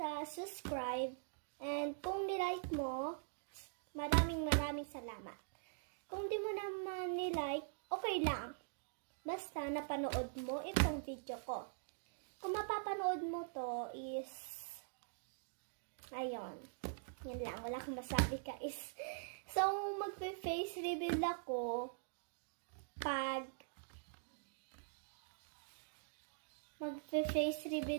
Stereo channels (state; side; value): silent; left; digital silence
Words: subscribe. And kung nilike mo, maraming salamat. Kung di mo naman nilike, okay lang. Basta napanood mo itong video ko. Kung mapapanood mo to is, ayun. Yan lang, wala akong masabi guys. So, magpe-face reveal ako magpe-face